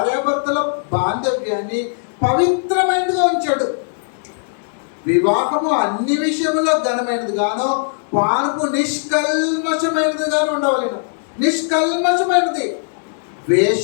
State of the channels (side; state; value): right; silent; 67 dB below the other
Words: బాంధవ్యాన్ని పవిత్రమైనదిగా ఉంచాడు. వివాహము అన్ని విషయంలో ఘనమైనది గాను, పానుపు నిష్కల్మషమైనది గాను ఉండవలెను. నిష్కల్మషమైనది.